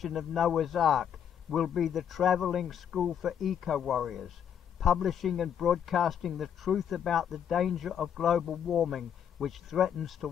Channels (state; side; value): quieter; right; 8.7 dB